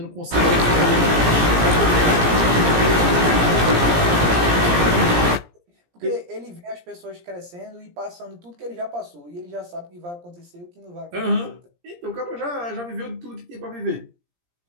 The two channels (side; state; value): left; late; 17 ms